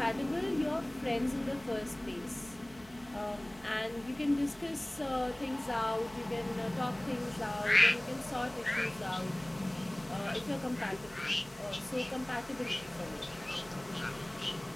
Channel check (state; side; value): noise; right; hum, 23 dB below the sound